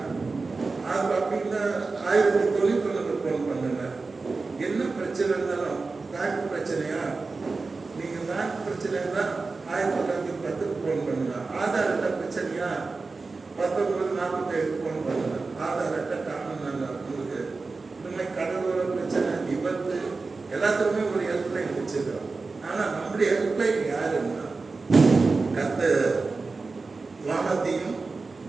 அது அப்படின்னா 1091க்கு ஃபோன் பண்ணுங்க. என்ன பிரச்சனை இருந்தாலும் பேங்க் பிரச்சனையா நீங்கள் பேங்க் பிரச்சனை இருந்தால் 1910க்கு ஃபோன் பண்ணுங்க. ஆதார் அட்டை பிரச்சனையா 1947க்கு ஃபோன் பண்ணுங்க. ஆதார் அட்டை காணணும் உங்களுக்கு. இந்த மாதிரி கடலோர பிரச்சனை, விபத்து எல்லாத்துக்குமே ஒரு ஹெல்ப்லைன் வச்சுக்கிறோம். ஆனால் நம்முடைய ஹெல்ப்லைன் யாருன்னா கர்த்தர் வானத்தையும்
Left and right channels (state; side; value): quieter; left; 4.0 dB